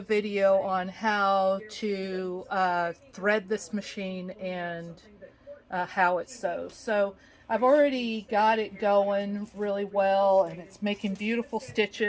on how to thread this machine and how it sews. So I've already got it going really well, and it's making beautiful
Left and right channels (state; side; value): identical; both; correlation 1.00